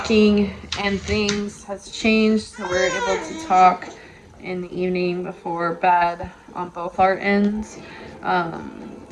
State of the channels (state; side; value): identical; both; correlation 1.00